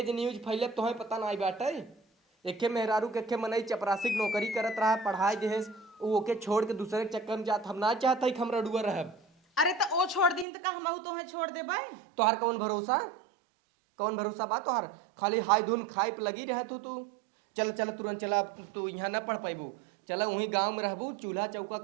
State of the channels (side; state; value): left; drops out; at 10.5 s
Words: न्यूज फैले तो पता ना बाटे। एके मेहरारू के एके मनई चपरासी नौकरी करत रहा पढ़ाई देहे ओके छोड़ के दूसरे के चक्कर में जात हम ना चाहते कि हम रडुआ रहब। अरे तो ओ छोड़ दी तो का हम तो छोड़ दे भाई। तोहार कौन भरोसा बा तोहार खाली हाय धुन खाए पे लगी रह तू चल चल तुरंत चला तू यहाँ न पढ़ पाबू। चला वहीं गांव में रहबू चूल्हा चौका